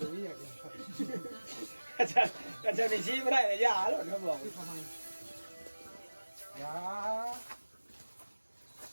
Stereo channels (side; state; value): both; inverted; correlation -1.00